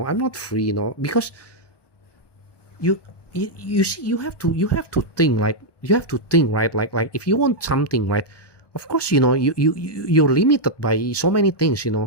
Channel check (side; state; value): right; late; 1.2 ms